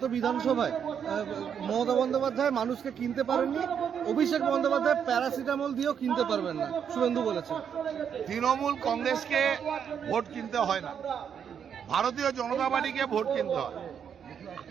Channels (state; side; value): quieter; left; 7.9 dB